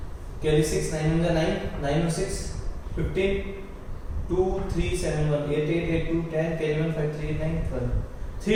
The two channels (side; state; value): both; identical; correlation 1.00